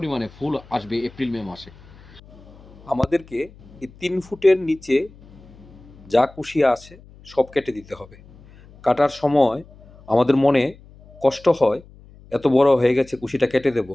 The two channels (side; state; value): left; noise; hum, 23 dB below the sound